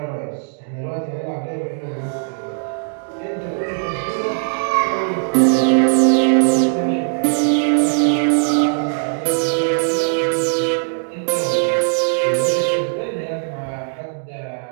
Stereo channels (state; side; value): silent; left; 66 dB below the other